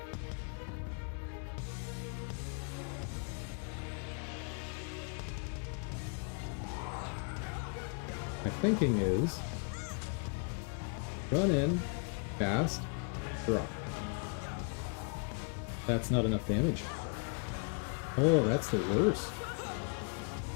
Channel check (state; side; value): quieter; right; 39.2 dB